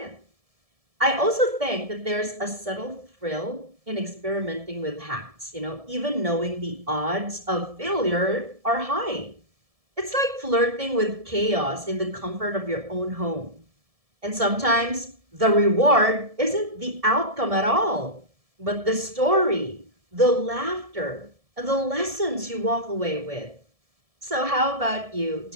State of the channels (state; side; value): late; left; 1.7 ms